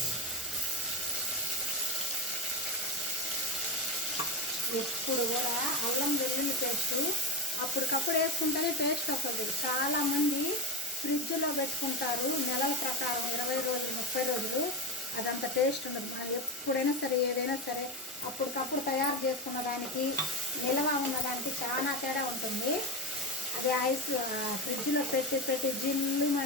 ఎప్పుడు కూడా అల్లం వెల్లుల్లి పేస్ట్ అప్పటికప్పుడు వేసుకుంటేనే టేస్ట్ వస్తుంది. చాలామంది ఫ్రిడ్జ్లో పెట్టుకుంటారు నెలల ప్రకారం, 20 రోజులు 30 రోజులు. అదంత టేస్ట్ ఉండదు. మనం ఎప్పుడైనా సరే ఏదైనా సరే అప్పటికప్పుడు తయారు చేసుకున్న దానికి నిల్వ ఉన్నదానికి చాలా తేడా ఉంటుంది. అది ఐస్ ఫ్రిడ్జ్లో పెట్టి జిల్లు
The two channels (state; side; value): normal; both; correlation 0.18